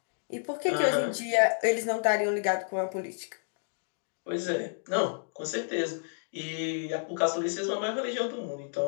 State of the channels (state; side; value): silent; right; digital silence